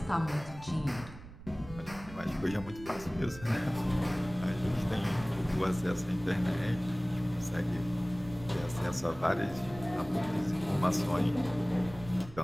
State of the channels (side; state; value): right; noise; rumble, 16 dB below the sound